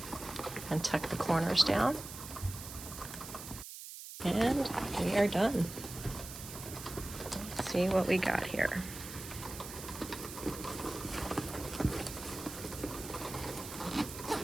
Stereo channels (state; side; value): noise; right; hiss, 11 dB below the sound